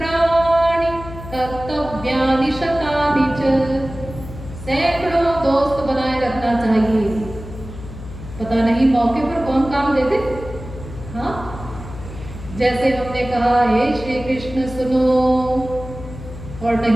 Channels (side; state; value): left; noise; hum, 12 dB below the sound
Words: कर्तव्यानि शतानि च। सैकड़ों दोस्त बनाए रखना चाहिए, पता नहीं मौके पर कौन काम दे दे। हाँ, जैसे हमने कहा हे श्री कृष्ण सुनो, और